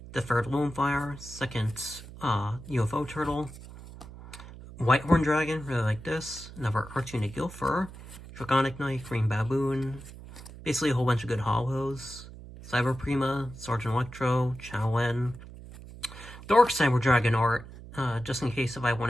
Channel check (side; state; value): right; noise; hum, 15 dB below the sound